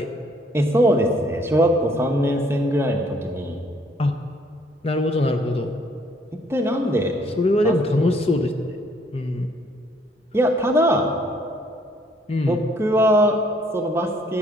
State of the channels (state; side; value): normal; both; correlation 0.64